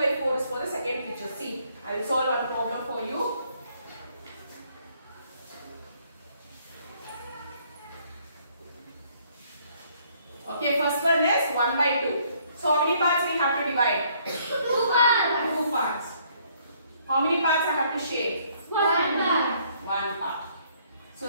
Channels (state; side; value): inverted; both; correlation -0.65